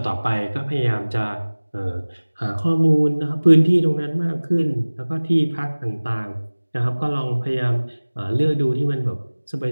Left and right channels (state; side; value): inverted; both; correlation -1.00